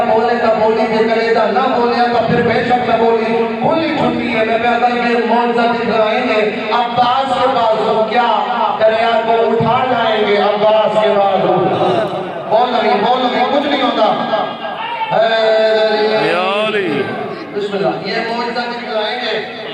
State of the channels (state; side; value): identical; both; correlation 1.00